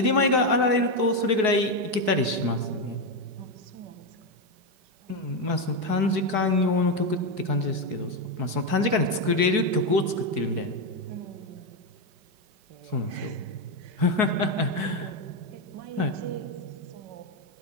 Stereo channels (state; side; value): late; left; 4.7 ms